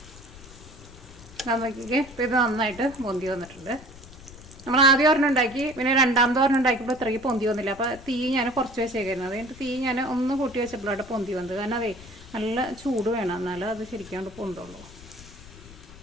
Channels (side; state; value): left; noise; rumble, 19 dB below the sound